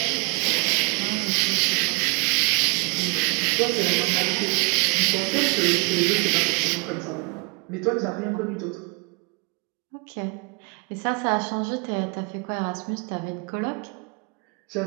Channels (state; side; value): quieter; left; 32.4 dB